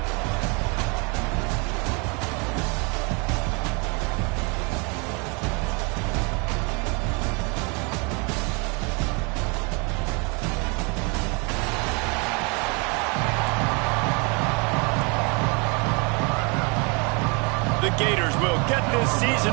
The Gators will get this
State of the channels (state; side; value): quieter; left; 31.4 dB